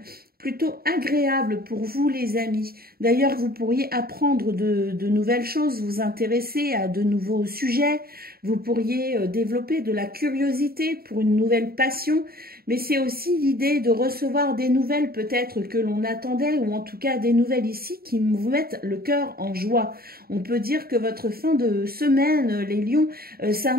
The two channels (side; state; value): left; late; 0.44 ms